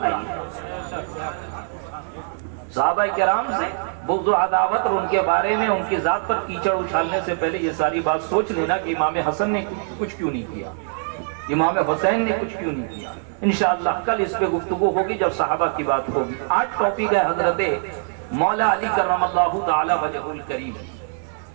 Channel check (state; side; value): silent; left; digital silence